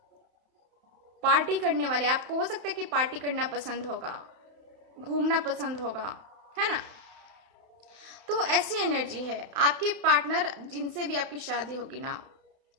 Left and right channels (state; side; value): late; left; 31 ms